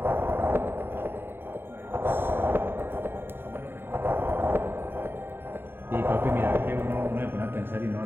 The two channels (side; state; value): left; late; 0.11 ms